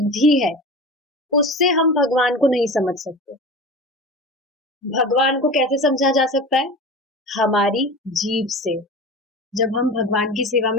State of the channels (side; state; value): both; normal; correlation 0.32